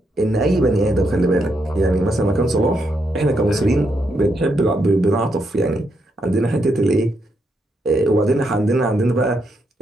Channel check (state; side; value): normal; both; correlation 0.80